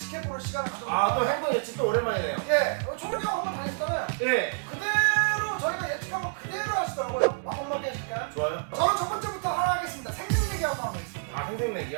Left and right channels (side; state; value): left; silent; 59 dB below the other